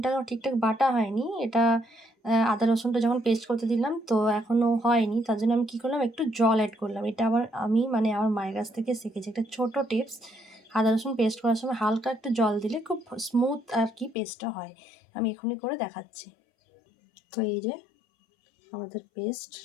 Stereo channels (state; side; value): drops out; right; at 14.2 s